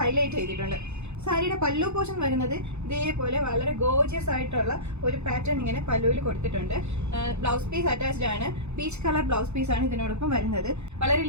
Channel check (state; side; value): late; left; 0.81 ms